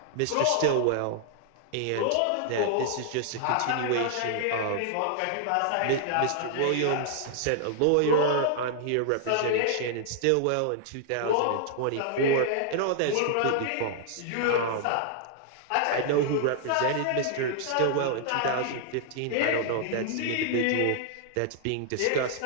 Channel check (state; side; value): different; both; correlation 0.00